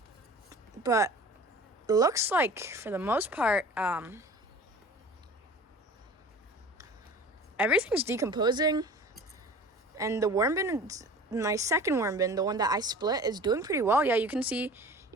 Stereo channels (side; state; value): both; normal; correlation 0.42